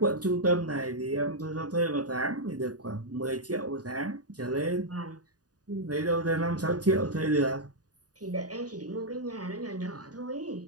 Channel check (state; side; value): late; left; 0.68 ms